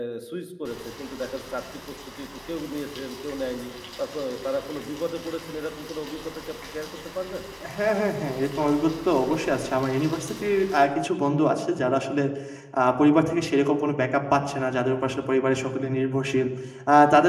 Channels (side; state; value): both; identical; correlation 1.00